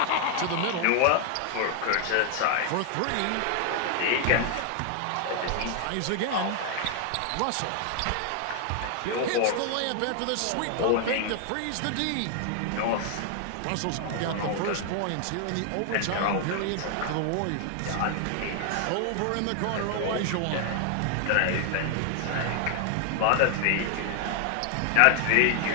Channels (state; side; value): different; both; correlation 0.00